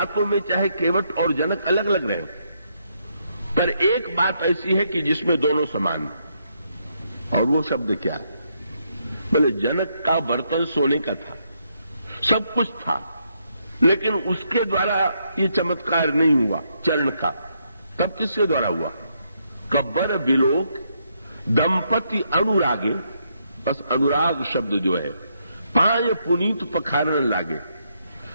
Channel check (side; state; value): both; inverted; correlation -0.76